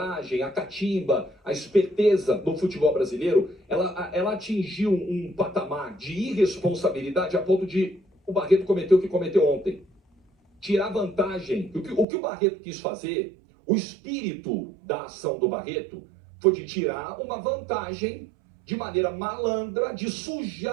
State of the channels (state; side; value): drops out; left; at 12.1 s